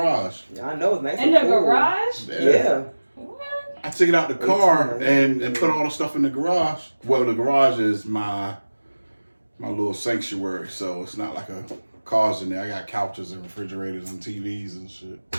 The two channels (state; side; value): inverted; both; correlation -1.00